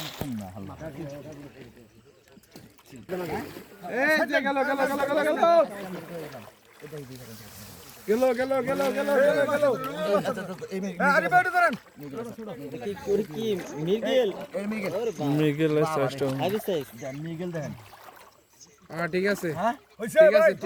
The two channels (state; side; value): identical; both; correlation 1.00